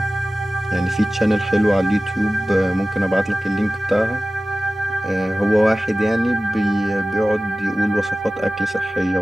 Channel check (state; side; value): normal; both; correlation 0.96